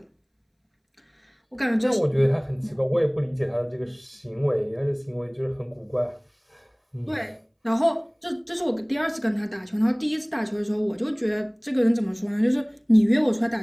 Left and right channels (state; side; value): identical; both; correlation 1.00